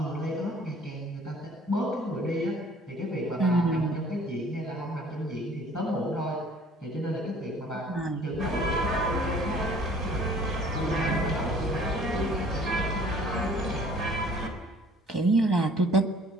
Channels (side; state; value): both; normal; correlation 0.54